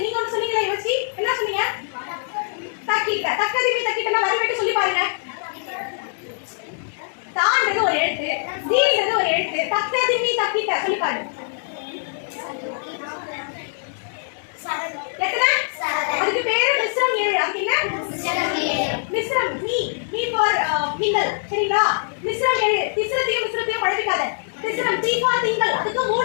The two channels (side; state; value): right; silent; digital silence